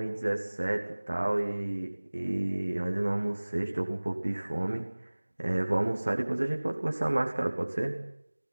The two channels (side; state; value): both; inverted; correlation -1.00